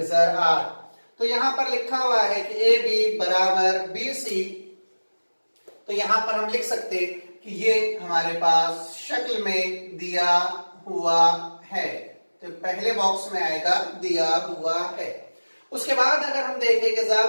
8। तो यहां पर लिखा हुआ है कि ए बी बराबर बी सी, तो यहां पर हम लिख सकते कि ये हमारे पास शक्ल में दिया हुआ है। तो पहले बॉक्स में आएगा दिया हुआ है। उसके बाद अगर हम देखें कि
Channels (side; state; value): both; inverted; correlation -1.00